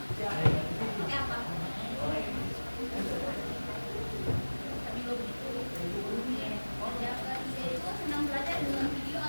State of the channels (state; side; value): inverted; both; correlation -1.00